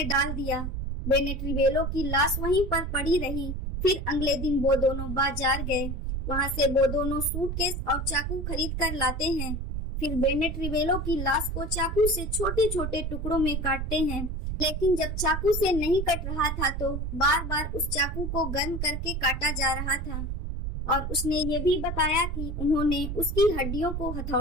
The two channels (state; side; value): noise; right; rumble, 3 dB below the sound